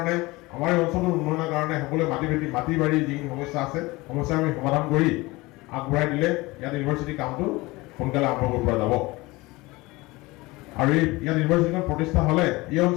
আমাৰ এই অঞ্চলটোৰ উন্নয়নৰ কাৰণে সকলোৱে মাটি বাৰী যিখিনি সমস্যা আছে সমস্যা আমি সমাধান কৰি আগবঢ়াই দিলে ইয়াত ইউনিভাৰ্চিটি কামটো সোনকালে আৰম্ভ কৰিব পৰা যাব। আৰু ইয়াত ইউনিভাৰ্চিটিখন প্ৰতিষ্ঠা হ'লে এই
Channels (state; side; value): quieter; right; 21.9 dB